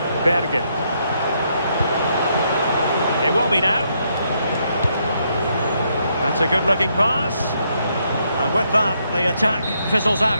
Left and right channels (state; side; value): inverted; both; correlation -0.75